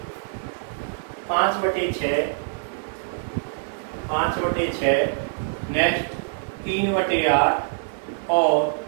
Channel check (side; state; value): left; silent; 62 dB below the other